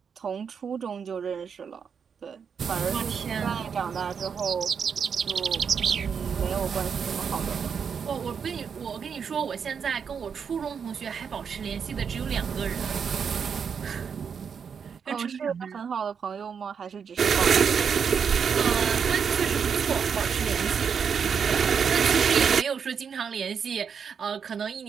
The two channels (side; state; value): left; quieter; 6.7 dB